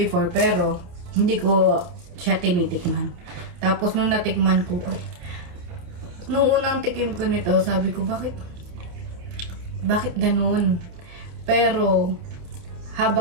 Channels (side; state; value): left; late; 28 ms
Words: pero hindi ko siya tinitikman. Tapos nung natikman ko, nung unang tikim ko nito, sabi ko, bakit ganun? Pero